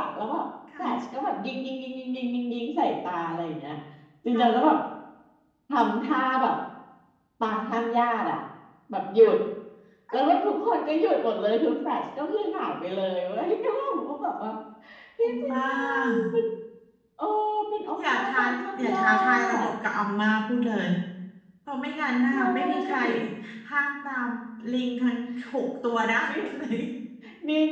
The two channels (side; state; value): both; identical; correlation 1.00